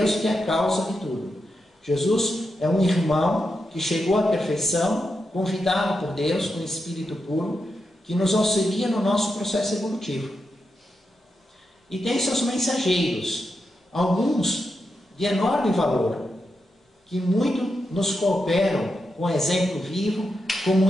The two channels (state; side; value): normal; both; correlation 0.86